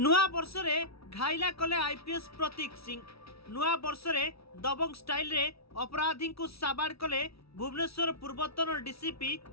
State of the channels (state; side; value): late; right; 0.76 ms